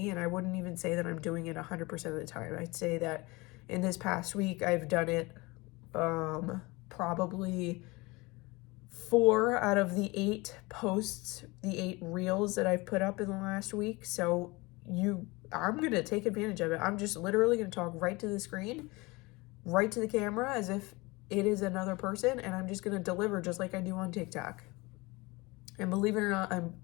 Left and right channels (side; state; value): right; quieter; 24.0 dB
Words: and I wouldn't even say that I'm doing it 100% of the time. I'd say that in this past week, I've done it probably 4 out of the 8 posts, the 8 reels that I've put up in the last week. So I'm going to take advantage of it. I'm just literally going to talk right to the screen, right to the camera, as if it is another person, and I'm just going to deliver just like I do on TikTok. And believe it or not, I'm